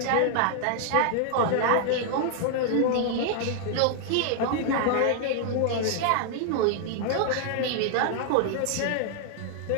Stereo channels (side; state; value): both; different; correlation 0.00